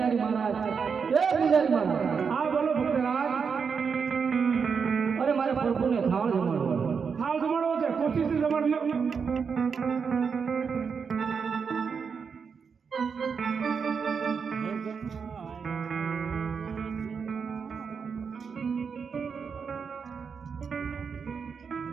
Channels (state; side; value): quieter; left; 6.0 dB